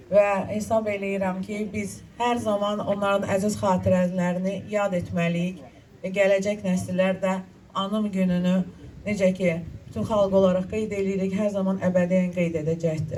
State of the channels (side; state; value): both; identical; correlation 1.00